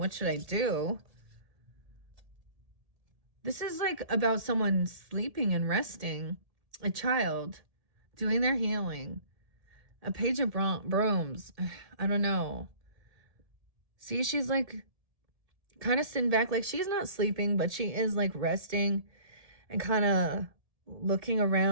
should I do? This is like about someone sleeping and resting. A child doing their healing. A page of brooms. I don't know. See, she's like kind of sitting back. Like she's not sleeping, but she is like resting and kind of looking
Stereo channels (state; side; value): late; left; 1.7 ms